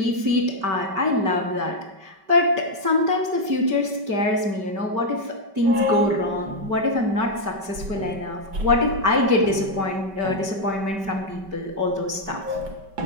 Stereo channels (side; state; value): left; late; 5.2 ms